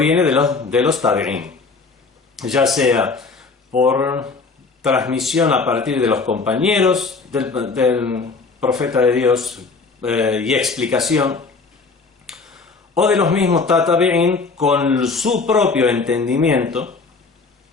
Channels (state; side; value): quieter; right; 4.3 dB